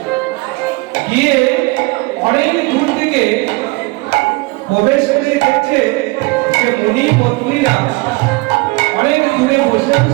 গিয়ে অনেক দূর থেকে প্রবেশ করে দেখছে যে মুনি পত্নীরা অনেক দূরে বসে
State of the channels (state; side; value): quieter; left; 24.9 dB